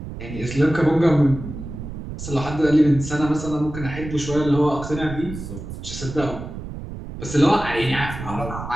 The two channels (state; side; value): noise; right; rumble, 9 dB below the sound